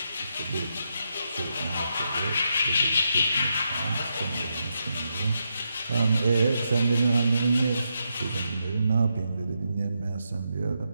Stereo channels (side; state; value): both; inverted; correlation -0.83